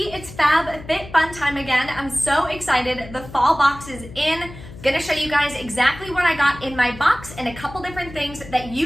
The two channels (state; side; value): noise; left; hum, 16 dB below the sound